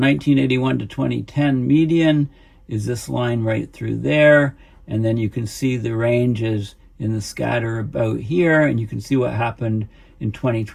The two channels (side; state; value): both; identical; correlation 1.00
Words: to 2010 median is this line right through there. And then you can see the ranges in the scatter about here, and you can see what happened in